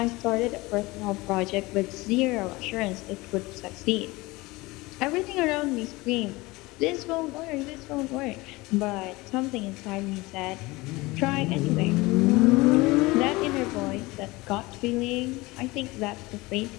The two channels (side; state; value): right; quieter; 22.0 dB